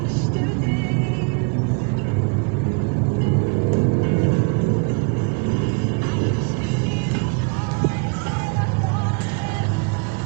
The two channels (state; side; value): quieter; left; 31.8 dB